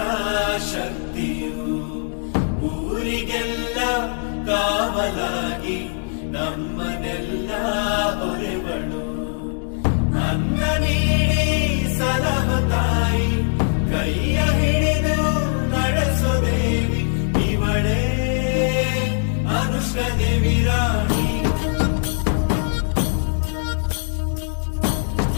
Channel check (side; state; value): right; silent; 61 dB below the other